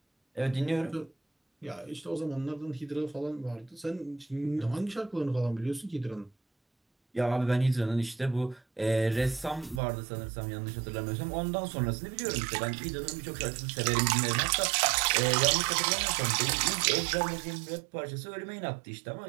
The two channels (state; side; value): drops out; left; at 9.8 s